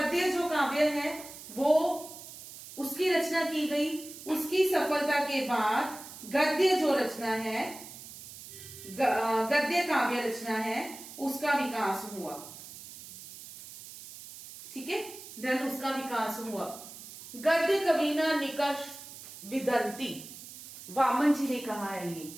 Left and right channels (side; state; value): right; noise; hiss, 14 dB below the sound